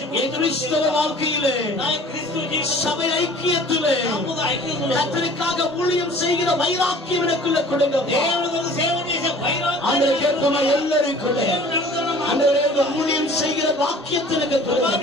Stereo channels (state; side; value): normal; both; correlation 0.48